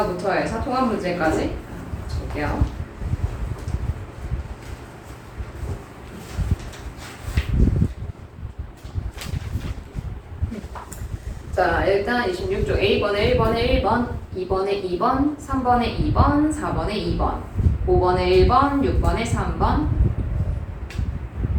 해서 통합 문제까지 볼게요. 자, 일단 26쪽 A번에 1번에 1번, 2번에 2번, 3번에 2번, 4번에 2번, 5번에 1번, 6번에 3번.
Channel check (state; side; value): identical; both; correlation 1.00